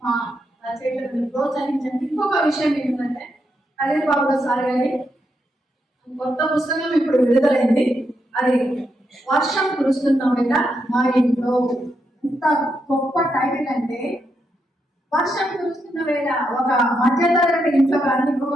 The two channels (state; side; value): normal; both; correlation 0.82